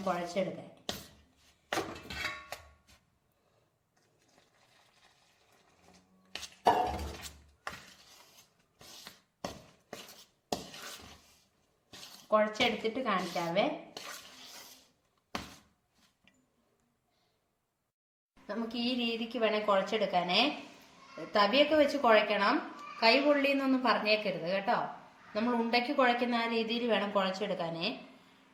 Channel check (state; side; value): identical; both; correlation 1.00